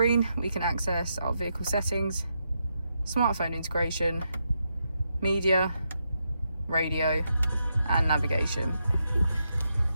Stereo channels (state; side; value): inverted; both; correlation -0.83